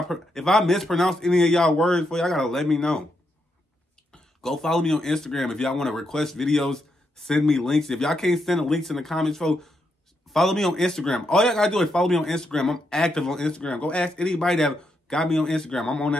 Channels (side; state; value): both; normal; correlation 0.81